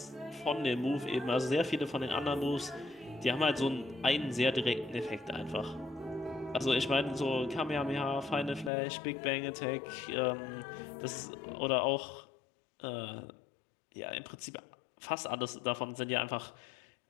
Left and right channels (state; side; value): drops out; right; at 8.7 s